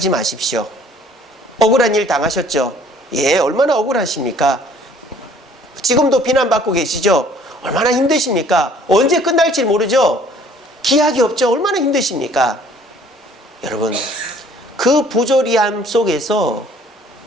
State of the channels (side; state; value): both; normal; correlation 0.56